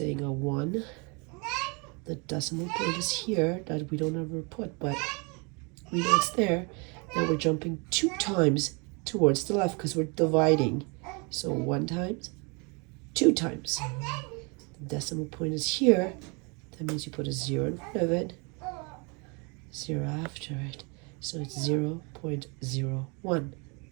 a 1. The decimal point is here, that we don't ever put, but we know it's there. Now we're jumping 2 times towards the left because we're dividing. So 1 times, 2 times. The decimal point is here. That means you put a 0 in front of it, 0 after it. So it's 0.01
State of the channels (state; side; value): quieter; left; 31.7 dB